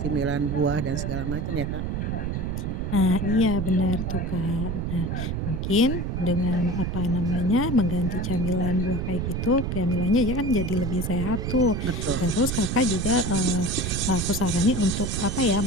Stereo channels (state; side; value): noise; right; rumble, 2 dB below the sound